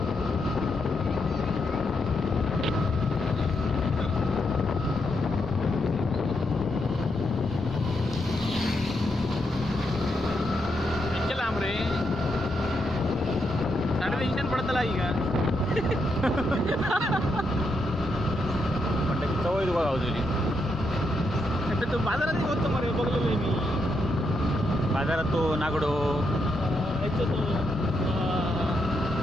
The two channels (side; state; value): both; normal; correlation 0.81